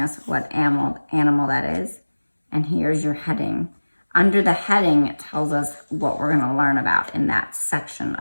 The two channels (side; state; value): both; inverted; correlation -1.00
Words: what animal that is. And here's your heading. Under the heading, it tells us what we're gonna learn about in that section